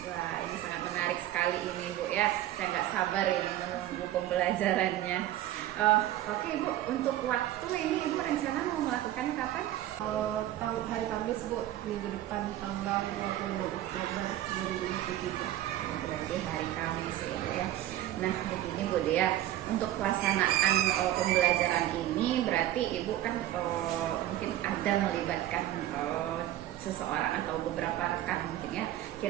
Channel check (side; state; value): left; quieter; 13.6 dB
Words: Wah, ini sangat menarik sekali ini Bu ya. Saya nggak sabar ini menunggu pembelajarannya. Oke Ibu, untuk waktu ini Ibu rencana mau melakukannya kapan? Hari Kamis Bu, minggu depan tanggal 26 Oktober 2023. Berarti hari Kamis ya. Nah, begini Bu Dea, untuk pelaksanaan pembelajaran ini berarti Ibu kan mungkin ada melibatkan seseorang atau beberapa rekan mungkin ya.